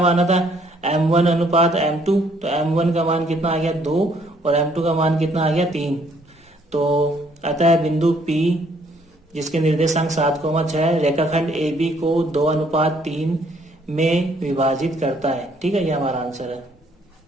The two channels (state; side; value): normal; both; correlation 0.65